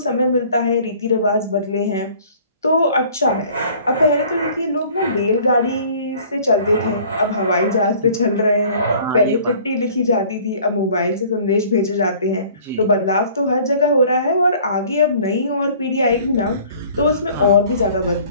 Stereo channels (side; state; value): both; inverted; correlation -0.51